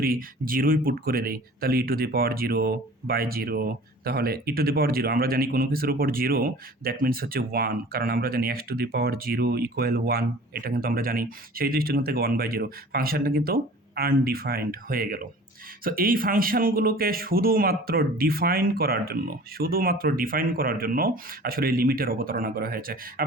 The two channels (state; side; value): normal; both; correlation 0.45